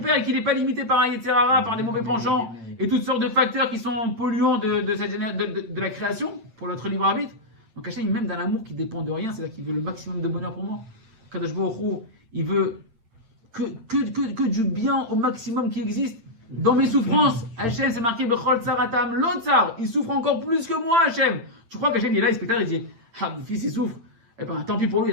et qu'il n'est pas limité par un Yetzirara, par des mauvais penchants, et toutes sortes de facteurs qui sont polluants de la création, pour notre libre arbitre, donc Hachem, il m'aime d'un amour qui dépend de rien, c'est-à-dire qu'il veut le maximum de bonheur pour moi. Kadosh Baruch Hu, il veut que du bien au maximum qui existe. Dans mes souffrances, Hachem, c'est marqué Bechol Tsaratam Lotsar. Il souffre encore plus que moi, Hachem. Tu crois qu'Hachem, il est là, il spectacle, il dit ah, mon fils, il souffre. Eh ben, tant pis pour lui,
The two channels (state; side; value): late; left; 8.8 ms